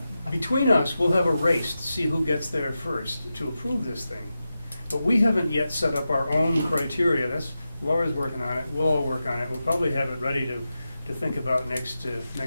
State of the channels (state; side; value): inverted; both; correlation -0.91